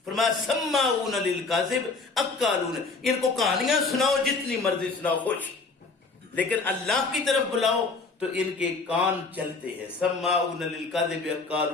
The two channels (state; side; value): quieter; right; 4.0 dB